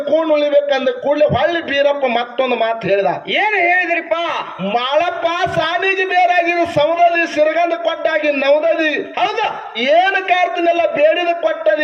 ಕೂಣ್ ಉಳಿಬೇಕಂದ ಕೂಡಲೇ ಹೊಳ್ಳಿ ಬೀರಪ್ಪ ಮತ್ತೊಂದು ಮಾತು ಹೇಳ್ದ. ಏನ್ ಹೇಳಿದ್ರಿಪ್ಪ? ಮಾಳಪ್ಪ ಸಾನಿಗೆ ಬೇರಾಗಿದ್ದು ಸೌದದಿ ಸಿರಗಂದ ಕೊಟ್ಟಾಗಿ ನವದದಿ. ಹೌದ, ಏನು ಕಾರ್ತಿನೆಲ್ಲ ಬೇಡಿದ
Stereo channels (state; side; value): identical; both; correlation 1.00